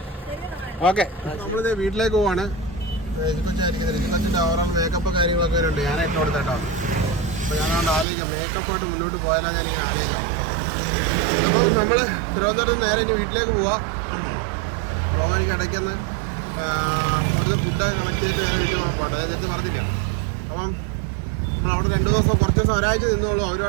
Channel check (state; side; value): drops out; left; at 8.1 s